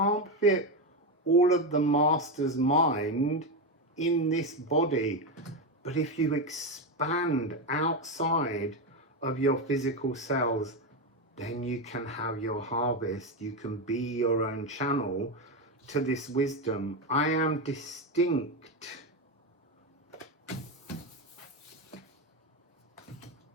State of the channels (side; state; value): both; normal; correlation 0.11